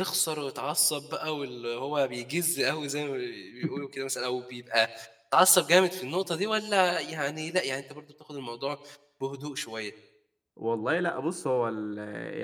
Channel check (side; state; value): both; identical; correlation 1.00